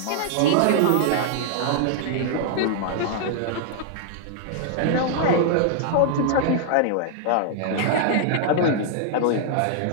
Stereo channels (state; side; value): different; both; correlation -0.01